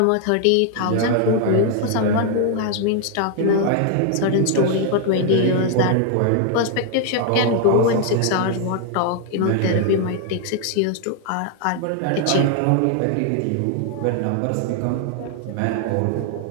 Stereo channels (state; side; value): different; both; correlation 0.00